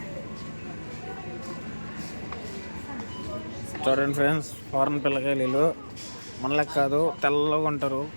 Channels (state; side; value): inverted; both; correlation -1.00